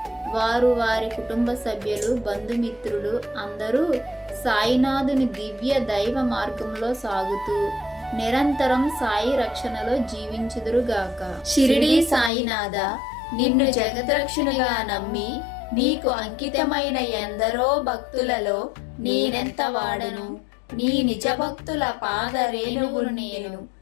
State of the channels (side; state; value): right; drops out; at 12.3 s